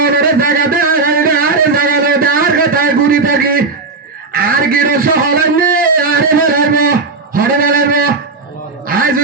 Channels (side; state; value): left; quieter; 3.9 dB